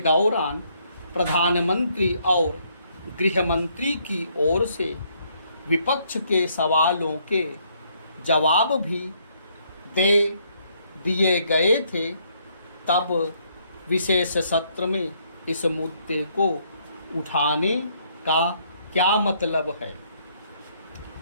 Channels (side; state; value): both; inverted; correlation -0.70